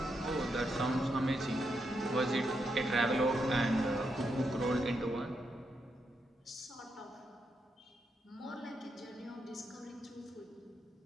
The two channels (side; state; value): both; normal; correlation 0.82